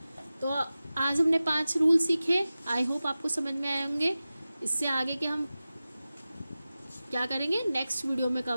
तो आज हमने 5 रूल सीखे, आई होप आपको समझ में आए होंगे। इससे आगे के हम क्या करेंगे, नेक्स्ट वीडियो में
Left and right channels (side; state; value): both; inverted; correlation -0.96